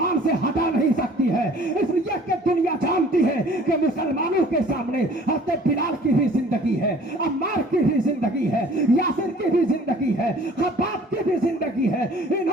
سے ہٹا نہیں سکتی ہے۔ اس لیے کہ دنیا جانتی ہے کہ مسلمانوں کے سامنے حضرت بلال کی بھی زندگی ہے، عمار کی بھی زندگی ہے، یاسر کی بھی زندگی ہے، خباب کی بھی زندگی ہے۔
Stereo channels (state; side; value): normal; both; correlation 0.51